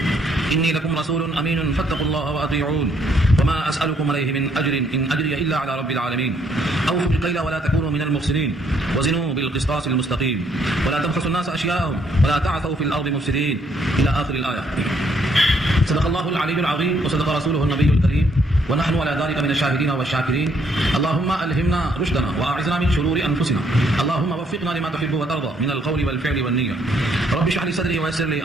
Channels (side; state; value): both; normal; correlation 0.69